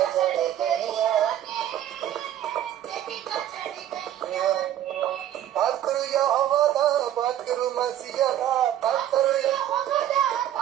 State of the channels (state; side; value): quieter; left; 11.6 dB